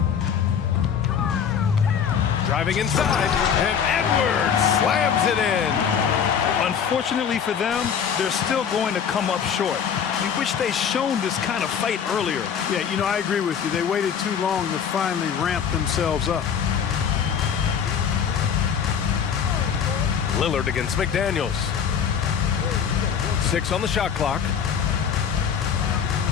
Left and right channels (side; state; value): right; quieter; 7.6 dB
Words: Driving inside, and Edwards slams it in. Unfortunately for them, they're still going to come up short. We wish they'd shown this kind of fight earlier. Yeah, you know, I agree with you. They waited too long to finally ramp themselves up. Lillard against McDaniels. 6 on the shot clock.